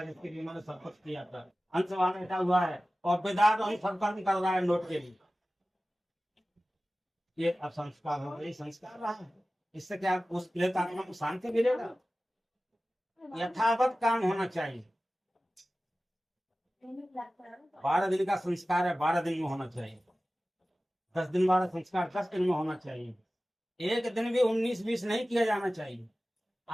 है जिसके लिए उन्होंने सब कुछ किया था, अंश वहां बैठा हुआ है और बेदार वही सब कर्म कर रहा है नोट के लिए। ये अब संस्कार हो गए, संस्कार रहा है। इससे क्या उस प्रेत आत्मा को शांति मिलेगा? यथावत काम होना चाहिए। 12 दिन का संस्कार है, 12 दिन में होना चाहिए। 10 दिन वाला संस्कार 10 दिन में होना चाहिए। एक दिन भी 19-20 नहीं किया जाना चाहिए।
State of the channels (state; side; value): normal; both; correlation 0.96